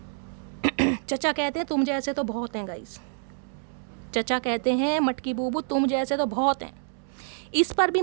चचा कहते हैं तुम जैसे तो बहुत हैं गाइस, चचा कहते हैं मटकी बूबू तुम जैसे तो बहुत हैं। इस पर भी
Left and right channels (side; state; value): left; silent; digital silence